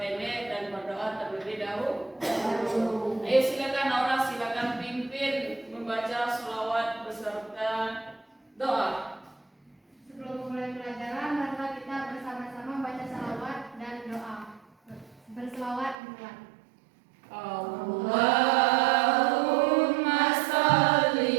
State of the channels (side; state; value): left; drops out; at 16.0 s